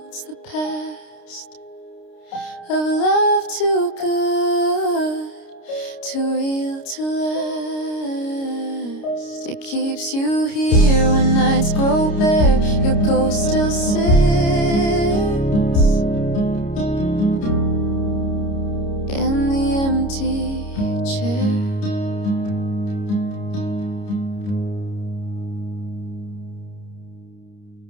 of love too good, too real to last. It keeps you here when nights grow bare, your ghost still sits in the empty chair.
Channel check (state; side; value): late; right; 29 ms